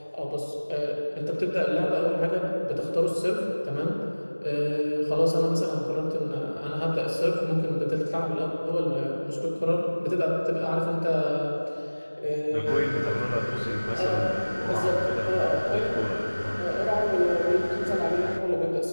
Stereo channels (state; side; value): inverted; both; correlation -1.00